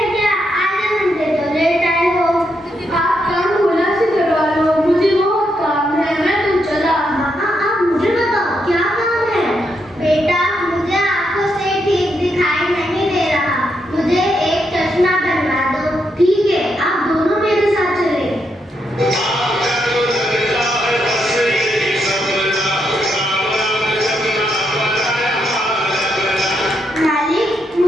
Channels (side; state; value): both; normal; correlation 0.80